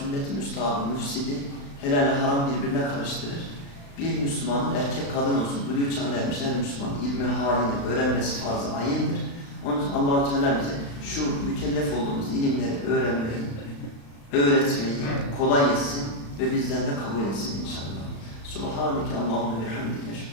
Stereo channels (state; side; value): late; right; 35 ms